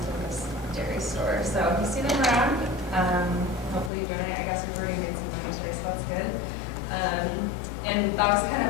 Campus Dairy Store. So if you see them around, hopefully you donate. I guess we've already made some money today, so that's good. And that was kind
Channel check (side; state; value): right; drops out; at 3.9 s